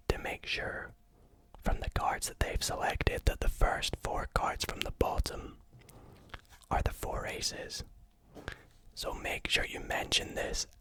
to make sure from the cards that they've selected that the first 4 cards from the bottom are the 4 aces. So make sure you mention this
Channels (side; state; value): both; identical; correlation 1.00